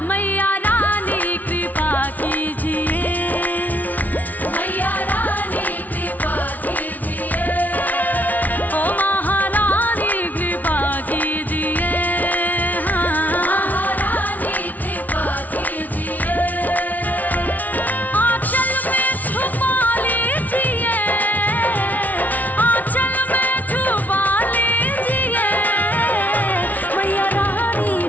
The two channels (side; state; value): right; late; 0.077 ms